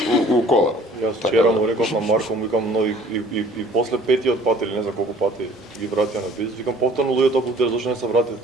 у кола. Јас вчера му реков на Марко, му викам, но и после петиот пат или не знам колку пати ги вратија на бизнес, викам повторно луѓето буте зашто не се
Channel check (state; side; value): normal; both; correlation 0.53